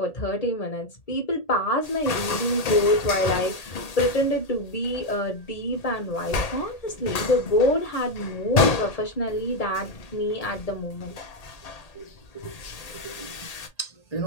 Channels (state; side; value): late; right; 1.8 ms